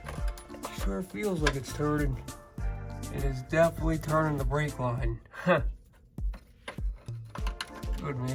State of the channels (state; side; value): identical; both; correlation 1.00